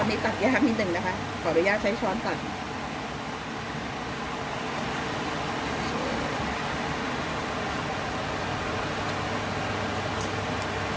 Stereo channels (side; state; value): both; identical; correlation 1.00